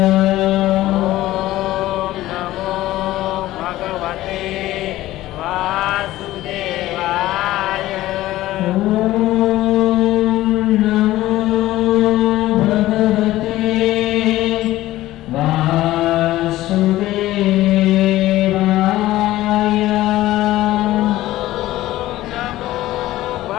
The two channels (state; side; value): quieter; right; 15.8 dB